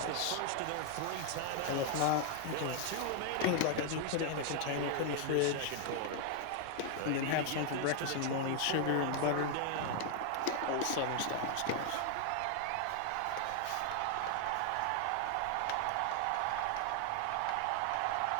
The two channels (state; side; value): different; both; correlation 0.00